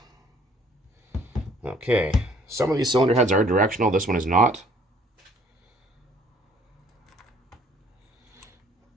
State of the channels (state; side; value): normal; both; correlation 0.58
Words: Okay. Some of these cylinder heads are directional. This one is not.